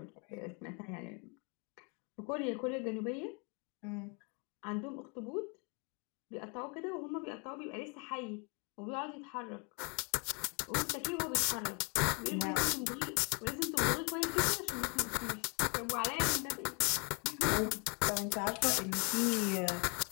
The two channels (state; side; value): quieter; right; 34.0 dB